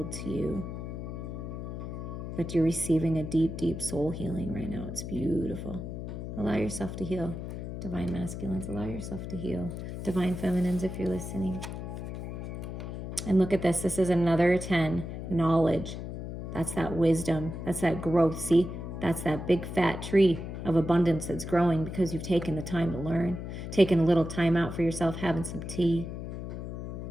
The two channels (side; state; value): left; noise; hum, 7 dB below the sound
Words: to you. But you're receiving a deep, deep soul healing right now. It's beautiful. Allow yourself to heal. Divine masculines, allow yourself to heal. Divine feminines, if you're listening. And look at this. This is another 10. Knowledge. That's that wisdom. That's that growth. See? That's that big fat tree of abundance that's growing because you've taken the time to learn. Taking a little time out for yourself, having some tea.